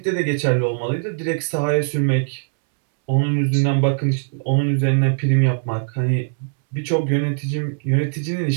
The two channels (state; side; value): silent; left; 65 dB below the other